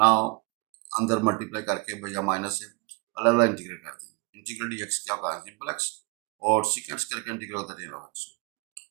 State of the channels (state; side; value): quieter; left; 26.7 dB